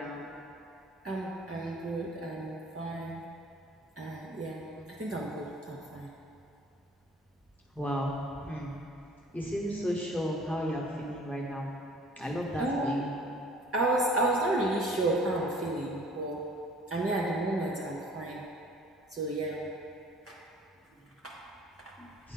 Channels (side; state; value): both; normal; correlation 0.51